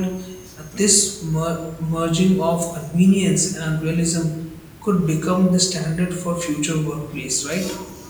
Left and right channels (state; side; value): identical; both; correlation 1.00